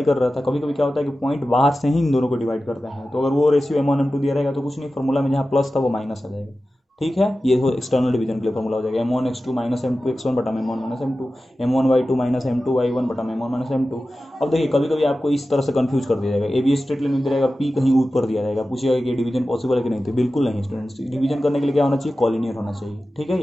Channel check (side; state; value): both; normal; correlation 0.94